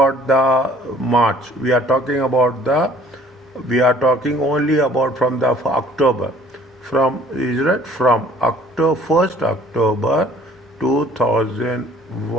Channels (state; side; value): normal; both; correlation 0.56